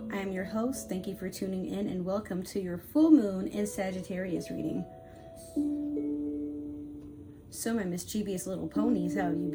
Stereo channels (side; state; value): both; identical; correlation 1.00